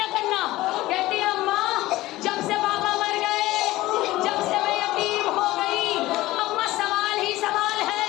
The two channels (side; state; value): right; quieter; 17.5 dB